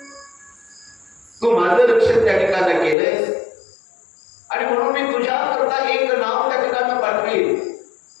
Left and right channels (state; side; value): drops out; right; at 3.0 s